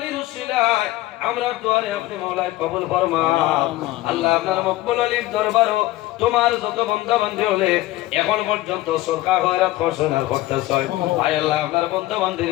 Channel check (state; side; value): quieter; right; 17.0 dB